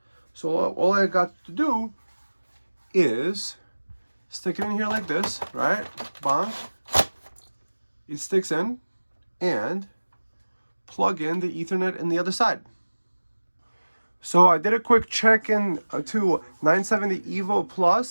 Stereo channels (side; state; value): both; inverted; correlation -1.00